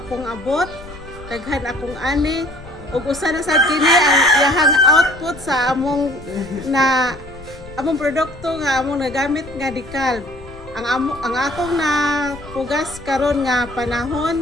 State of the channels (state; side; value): noise; left; rumble, 18 dB below the sound